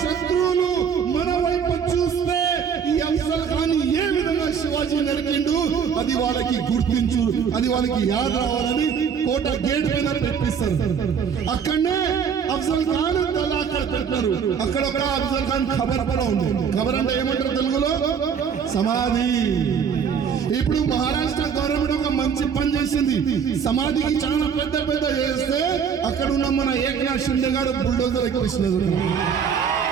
శత్రువులు మన వైపు చూస్తే ఈ అఫ్జల్ ఖాన్ ఏ విధంగా శివాజీ నరికిండు అది వాళ్ళకి గుర్తించు, అది వాళ్ళకి యాద రావాలని కోట గేట్ పైన పెట్టిస్తారు. అక్కడనే అఫ్జల్ ఖాన్ తల అక్కడ పెట్టారు. అక్కడ ఒక అఫ్జల్ ఖాన్ ఖబర్ కూడా ఉంది. ఖబర్ అంటే ఏమంటారు తెలుగులో, సమాధి. ఇప్పుడు మహారాష్ట్ర గవర్నమెంట్ ఒక మంచి పని చేసింది, సమాధికి చాలా పెద్ద పెద్ద చేస్తే అక్కడ ఉన్న మన ఏకనాథ్ షిండే గారు బుల్డోజర్ ఎక్కిస్తున్నారు.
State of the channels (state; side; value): quieter; left; 7.1 dB